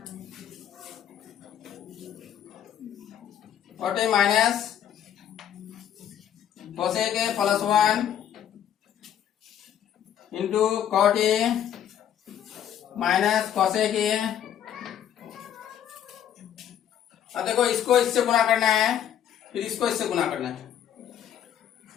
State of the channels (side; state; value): right; quieter; 9.9 dB